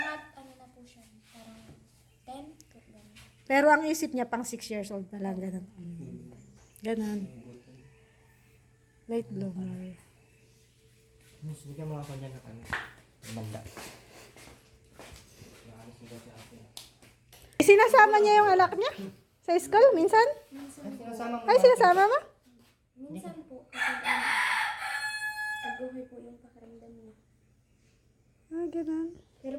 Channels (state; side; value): identical; both; correlation 1.00